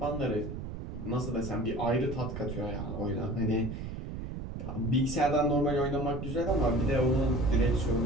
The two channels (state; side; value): noise; right; rumble, 7 dB below the sound